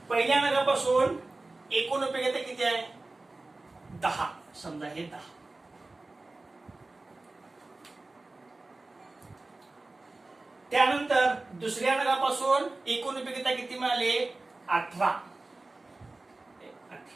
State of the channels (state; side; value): quieter; left; 3.1 dB